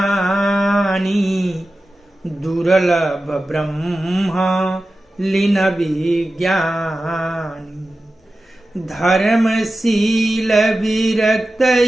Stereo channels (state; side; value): normal; both; correlation 0.94